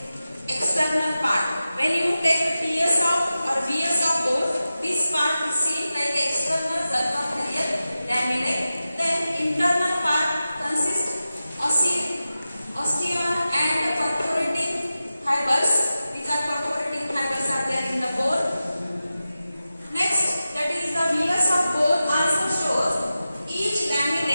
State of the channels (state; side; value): inverted; both; correlation -0.93